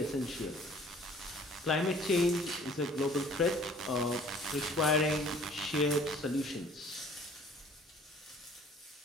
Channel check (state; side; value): normal; both; correlation 0.53